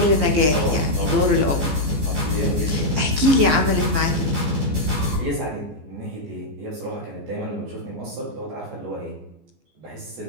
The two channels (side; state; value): left; late; 14 ms